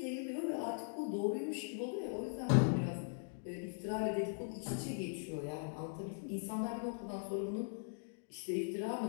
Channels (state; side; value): silent; right; digital silence